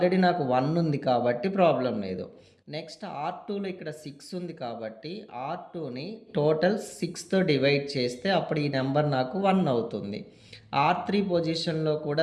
నాకు 1 ఉంది కాబట్టి ప్రాబ్లం లేదు. నెక్స్ట్ R2లో ఇక్కడ 6 ఉంది కాబట్టి R2ని టోటల్ 6తో డివైడ్ చేస్తే అప్పుడు ఈ నెంబర్ నాకు 1 అవుతుంది. R3 పొజిషన్లో కూడా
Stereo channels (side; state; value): both; identical; correlation 1.00